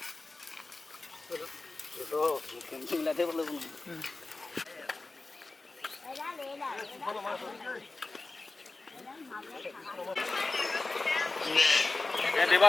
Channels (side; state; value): right; quieter; 3.4 dB